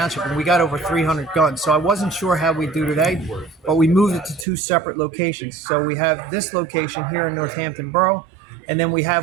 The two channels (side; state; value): left; drops out; at 4.5 s